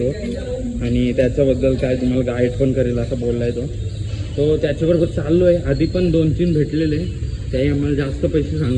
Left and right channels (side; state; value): both; identical; correlation 1.00